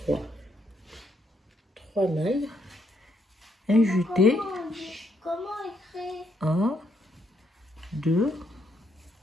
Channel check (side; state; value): both; normal; correlation 0.74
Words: 3 mailles. Un jeté. Comment écrire 1, 2